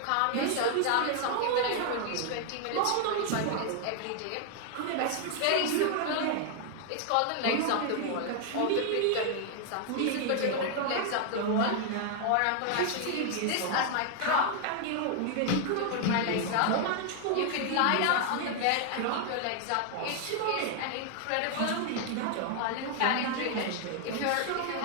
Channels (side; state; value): both; different; correlation 0.00